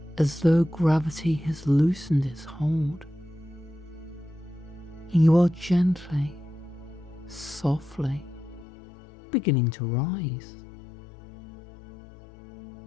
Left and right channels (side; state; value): right; drops out; at 8.7 s